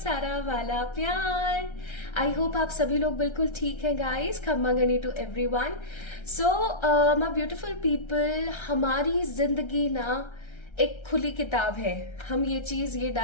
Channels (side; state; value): right; late; 1.3 ms